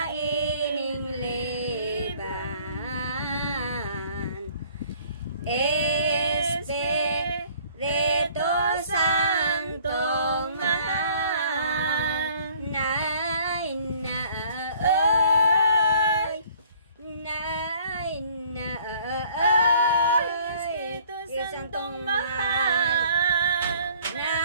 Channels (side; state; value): both; inverted; correlation -0.56